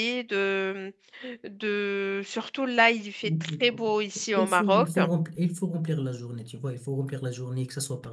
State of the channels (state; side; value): identical; both; correlation 1.00